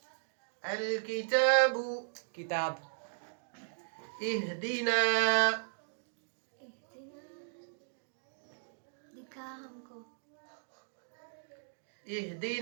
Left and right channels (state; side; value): silent; left; digital silence